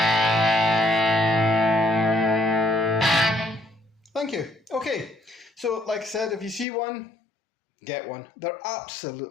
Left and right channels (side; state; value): right; drops out; at 6.7 s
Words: So like I said, if you see one, get one. They're